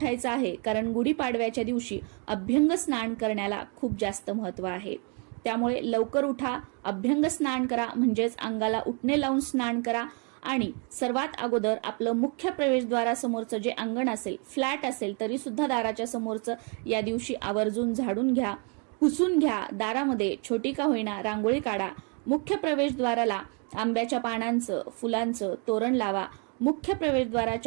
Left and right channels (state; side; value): quieter; left; 36.2 dB